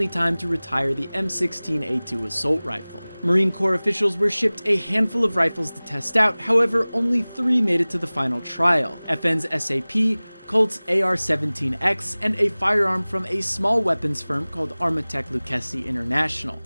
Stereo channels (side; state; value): both; inverted; correlation -1.00